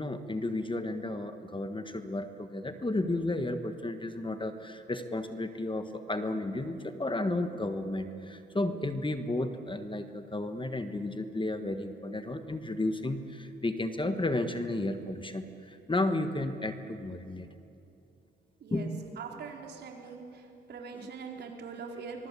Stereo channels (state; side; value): normal; both; correlation 0.76